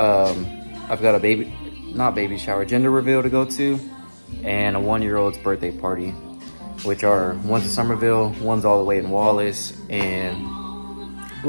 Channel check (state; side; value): inverted; both; correlation -1.00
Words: got a not baby shower, gender reveal to go to, and a 1-year-old's birthday party, which are one's in Somerville, one's all the way in Wallace, and a